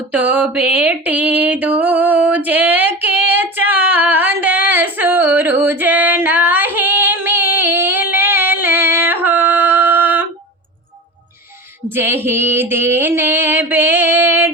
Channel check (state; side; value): normal; both; correlation 0.29